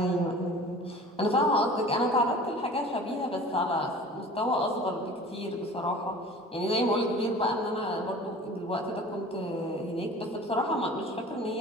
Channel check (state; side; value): normal; both; correlation 0.42